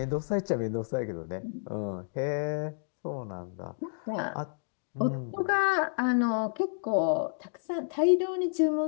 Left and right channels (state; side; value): silent; right; digital silence